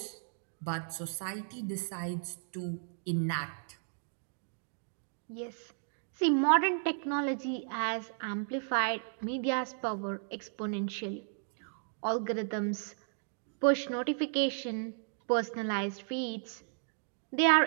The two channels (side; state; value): left; silent; digital silence